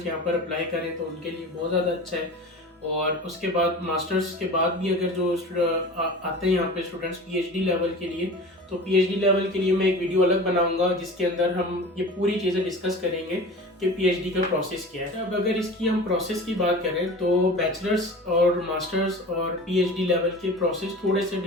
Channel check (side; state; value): both; normal; correlation 0.37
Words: यहाँ पर अप्लाई करें तो उनके लिए बहुत ज़्यादा अच्छा है। और उसके बाद मास्टर्स के बाद भी अगर जो आते हैं यहाँ पे स्टूडेंट्स PhD लेवल के लिए, तो PhD लेवल के लिए मैं एक वीडियो अलग बनाऊंगा जिसके अंदर हम ये पूरी चीज़ें डिस्कस करेंगे कि PhD का प्रोसेस क्या है। अब अगर इसकी हम प्रोसेस की बात करें तो बैचलर्स और मास्टर्स और PhD लेवल के प्रोसेस थोड़े से